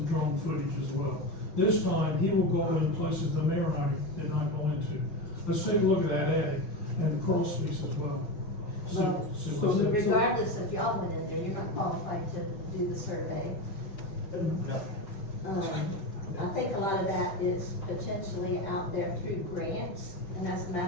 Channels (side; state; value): right; late; 5.9 ms